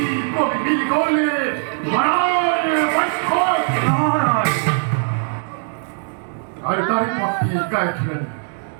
কবি মিল গলে ধরার বৈষ্ঠ আর তারই পথে গায়ে ছিলেন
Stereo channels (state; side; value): silent; left; 57 dB below the other